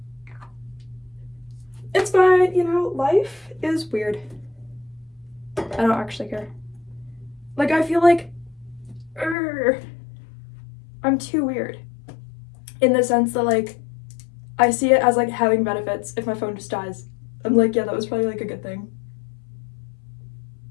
It's fine, you know, life is weird. I don't actually care. Like, I feel like, I'm too weird. In the sense that, like, I see it as, like, having benefits if my phone just dies. I'm like, yeah, that was probably, like, a good thing.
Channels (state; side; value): drops out; right; at 9.3 s